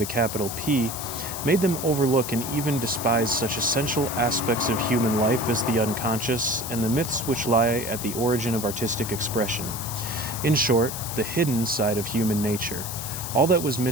a capital P, made them overlook and even despise such essential aspects of human life as the unconscious and the myths which lie at the origin of artistic expression. In short, the hidden side of human nature. All that was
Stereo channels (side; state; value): left; noise; hiss, 7 dB below the sound